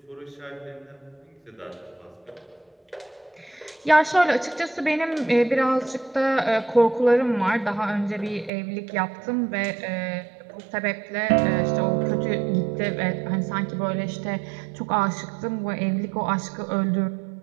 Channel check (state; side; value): drops out; left; at 8.5 s